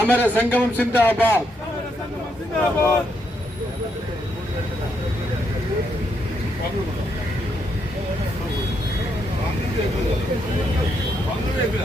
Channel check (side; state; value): both; normal; correlation 0.78